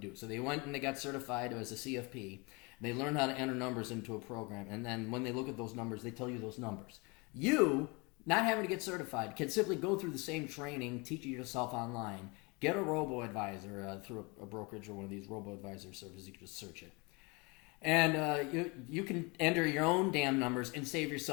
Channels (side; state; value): right; quieter; 28.5 dB